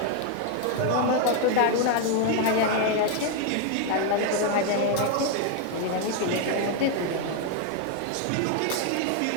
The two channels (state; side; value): different; both; correlation 0.01